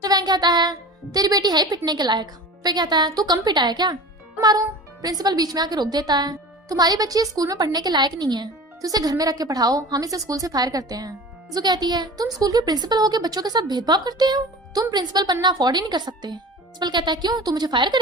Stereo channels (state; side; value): normal; both; correlation 0.36